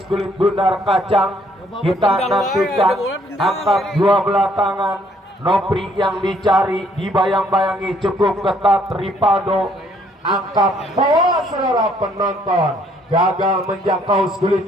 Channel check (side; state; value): both; normal; correlation 0.65